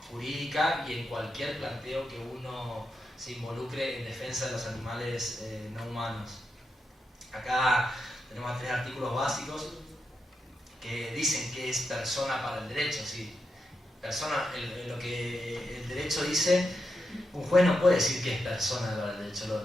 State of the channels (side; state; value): both; normal; correlation 0.85